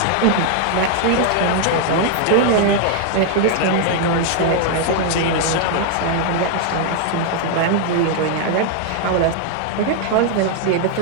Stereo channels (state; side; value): different; both; correlation 0.00